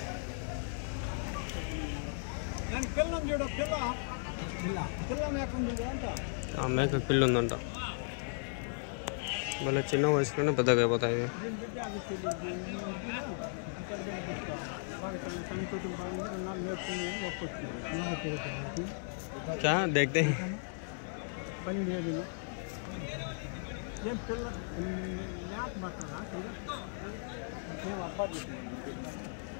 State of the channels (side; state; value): right; silent; 54 dB below the other